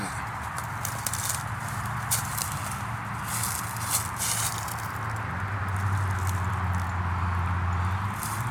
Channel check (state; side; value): identical; both; correlation 1.00